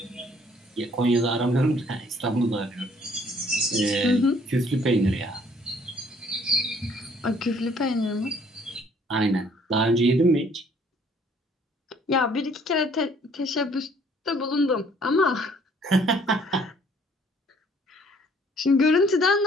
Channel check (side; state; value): both; normal; correlation 0.60